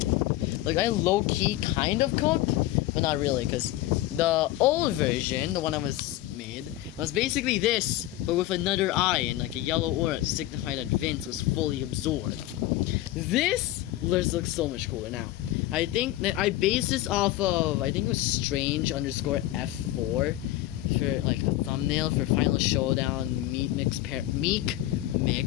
like, I low-key kind of cooked, but not really, because the old version, the one that was made, was basically this, but with another eye and like a yellow aura to signify that Vince was fully absorbed. This looks so much cooler now. I think that I based this off of, I think it was Strange _ F4 for like the thumbnail for Final Showdown Meek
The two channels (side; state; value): right; quieter; 15.3 dB